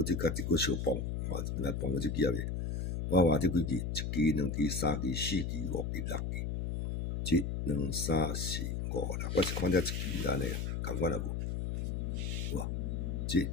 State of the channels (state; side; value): noise; left; hum, 2 dB below the sound